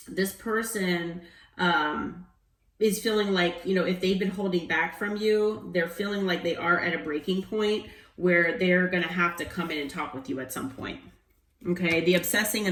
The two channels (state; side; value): identical; both; correlation 1.00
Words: this person, is feeling like, if they've been holding back from you, they're feeling like they are at a breaking point where they're going to have to come in and talk with you at some point. Okay, the obsessing